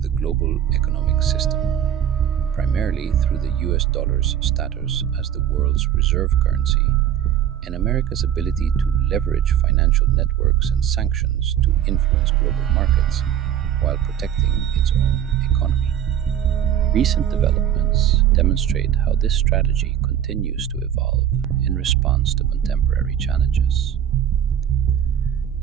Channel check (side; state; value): left; quieter; 10.1 dB